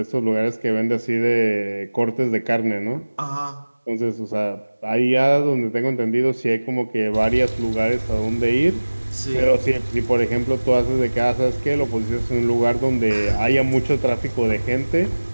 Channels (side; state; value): both; inverted; correlation -1.00